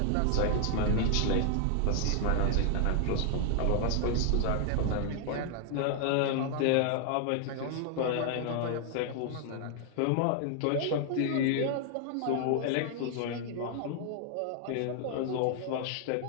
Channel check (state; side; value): different; both; correlation 0.00